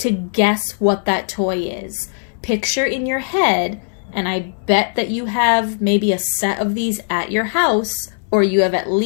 guess what that toy is. Picture in your head, and I bet that you have maybe a set of these at your house, or you have at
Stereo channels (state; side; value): silent; right; 63 dB below the other